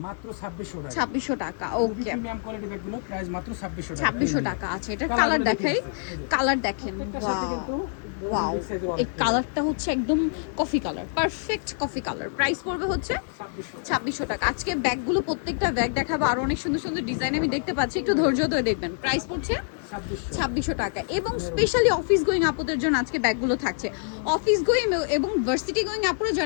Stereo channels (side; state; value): right; silent; digital silence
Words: মাত্র 2600 টাকা। 2600 টাকা। ওকে, প্রিমিয়াম কোয়ালিটি ব্যাগগুলো প্রাইস মাত্র 2600 টাকা। 2600 টাকা। আচ্ছা, এটার কালার দেখাই, কালার দেখেন। ওয়াও, এই কালারটা হচ্ছে একদম coffee colour, perfect coffee colour. Price পড়বে হচ্ছে 2600 টাকা। আজকে ব্যাগগুলো প্রত্যেকটা ব্যাগ দেখাবো, আর অনেক সুন্দর সুন্দর ডিজাইন আমি দেখতে পাচ্ছি, একটু ধৈর্য ধরে দেখবেন। প্রাইস পড়ছে 2600 টাকা। এবং স্পেশালি অফিস গোয়িং আপুদের জন্য আজকে ব্যাগগুলো থাকছে। অফিস গোয়িং এবং ভার্সিটি গোয়িং আপুরা